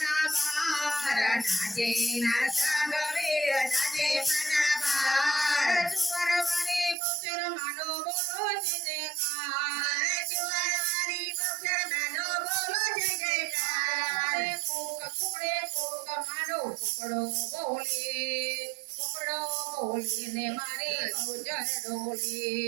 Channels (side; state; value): left; drops out; at 7.0 s